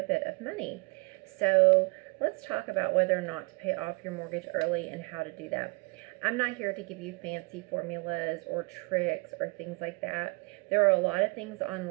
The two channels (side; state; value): left; quieter; 29.3 dB